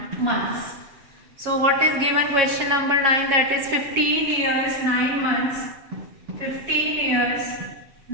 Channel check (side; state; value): left; late; 7.2 ms